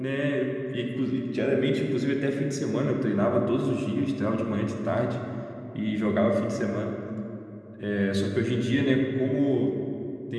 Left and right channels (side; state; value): both; identical; correlation 1.00